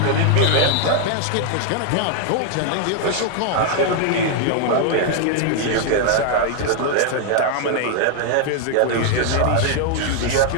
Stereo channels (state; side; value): different; both; correlation 0.00